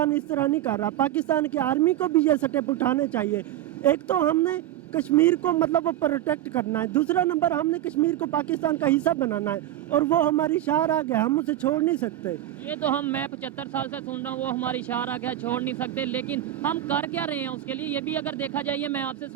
इस तरह नहीं कर रहा। पाकिस्तान की आर्मी को भी ये स्टेप उठाने चाहिए। एक तो हमने कश्मीर को मतलब वो प्रोटेक्ट करना है, दूसरा नंबर हमने कश्मीर को पाकिस्तान का हिस्सा बनाना है और वो हमारी शार आ गया, हम उसे छोड़ नहीं सकते। ये तो मैं 75 साल से सुन रहा हूँ, वो हमारी शार आ गया, छोड़ नहीं सकते, लेकिन हम कर क्या रहे हैं उसके लिए? ये भी अगर देखा जाए, मैं आपसे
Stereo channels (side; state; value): left; quieter; 13.0 dB